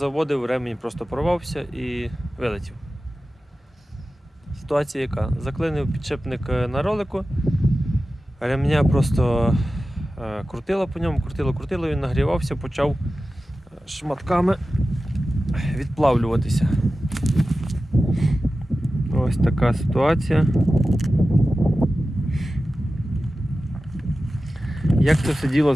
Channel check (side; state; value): both; normal; correlation 0.94